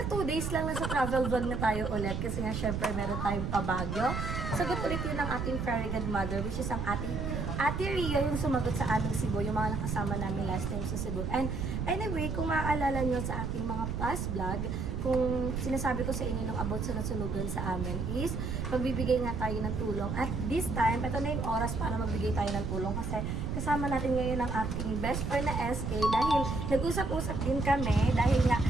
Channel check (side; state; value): right; noise; rumble, 3 dB below the sound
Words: 2 days lang na sa travel vlog na tayo ulit. Kasi nga syempre meron tayong pabagyo. Sagot ulit yun ng ating fairy godmother, which is ang Ate Ria yung sumagot sa aming Cebu, yung mga nakasama namin last time sa Cebu. And anyway, kung maaalala nyo sa ating mga past vlog, kung sinasabi ko sa inyo nung about sa nasunugan sa amin is, magbibigay nga tayo ng tulong. At this time, ito na yung oras para magbigay tayo ng tulong kasi kasama natin ngayon ang aking best friend na SK dahil nag-usap-usap din kami dahil nga